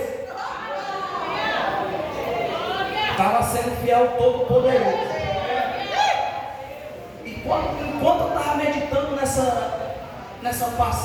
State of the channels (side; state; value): both; identical; correlation 1.00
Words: Estava sendo fiel ao Todo-Poderoso. E enquanto eu estava meditando nessa